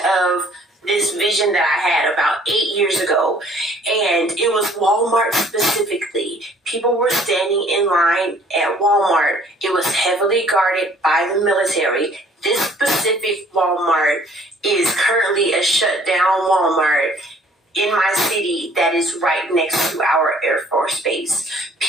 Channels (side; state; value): both; normal; correlation 0.57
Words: of this vision that I had about 8 years ago. And it was Walmart specifically. People were standing in line at Walmart. It was heavily guarded by the military. This specific Walmart is currently a shut down Walmart in my city that is right next to our Air Force Base.